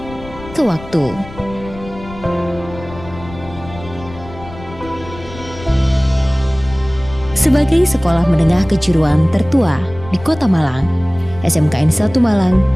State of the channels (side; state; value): left; noise; rumble, 16 dB below the sound